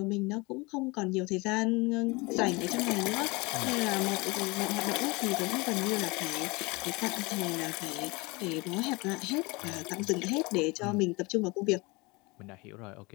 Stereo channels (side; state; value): right; quieter; 25.5 dB